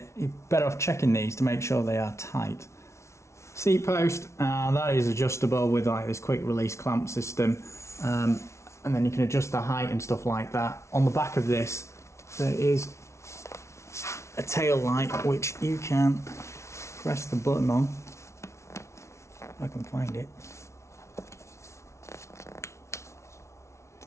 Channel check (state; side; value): late; right; 0.13 ms